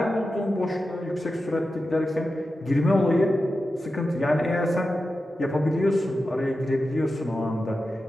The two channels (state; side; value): normal; both; correlation 0.91